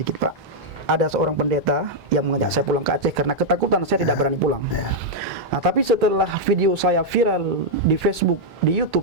Pak. Ada seorang pendeta yang mengajak saya pulang ke Aceh karena ketakutan saya tidak berani pulang. Nah, tapi setelah video saya viral di Facebook, di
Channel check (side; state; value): both; normal; correlation -0.03